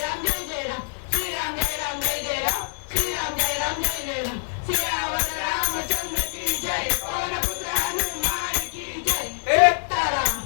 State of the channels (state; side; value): silent; right; digital silence